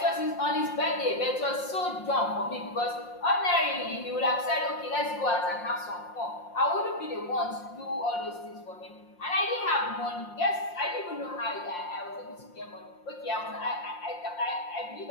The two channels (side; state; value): right; late; 5.6 ms